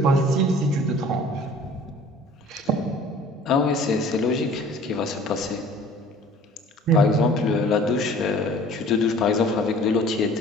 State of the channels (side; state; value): both; normal; correlation 0.49